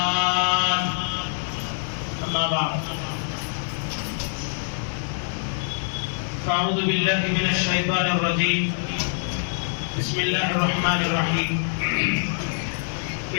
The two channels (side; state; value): right; silent; digital silence